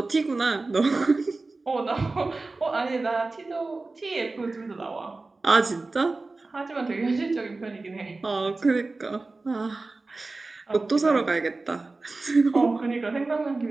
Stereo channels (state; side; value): quieter; left; 3.5 dB